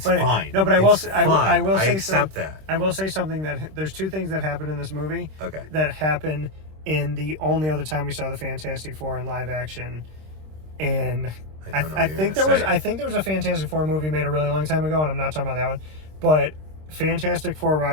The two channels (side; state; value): left; late; 26 ms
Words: fine. No, but I will say, I accept that. I will say something that there's 2 things that happen in this movie. Okay. That happen in the only other time we saw the Fantastic Four in live action. And I think there was a Fantastic Four movie made a really long time ago, and I'm not talking about that one. But Fantastic Four: